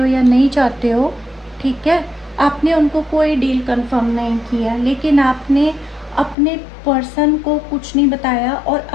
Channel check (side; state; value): right; drops out; at 6.4 s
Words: या नहीं चाहते हो। ठीक है, आपने उनको कोई डील कंफर्म नहीं किया, लेकिन आपने अपने पर्सन को कुछ नहीं बताया, और